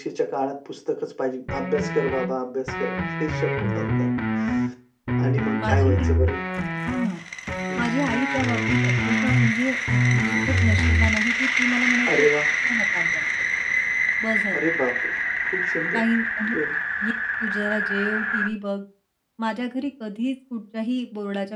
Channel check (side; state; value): both; identical; correlation 1.00